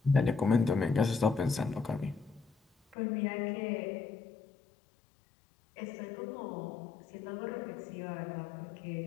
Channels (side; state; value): right; drops out; at 3.0 s